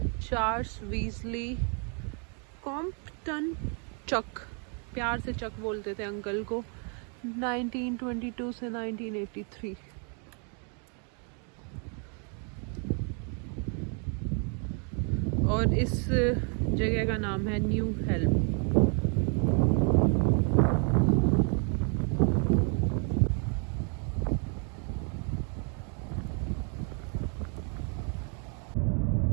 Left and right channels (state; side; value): quieter; left; 39.4 dB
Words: Charles Weasley Compton Chuck, प्यार से चक बोलते थे अंकल को, 1922 से 1983। और इस जगह का नाम है न्यू हेल्म।